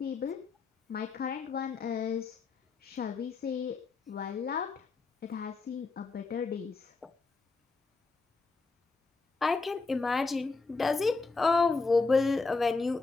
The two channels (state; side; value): quieter; right; 4.1 dB